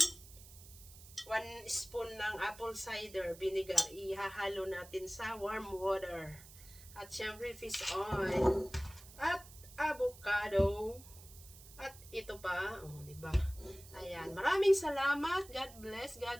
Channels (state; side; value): noise; right; hiss, 19 dB below the sound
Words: 1 spoon ng apple cider vinegar, ihahalo natin sa warm water. At syempre, fish oil. At avocado. At ito pa, di ba? Ayan, maraming salamat. God bless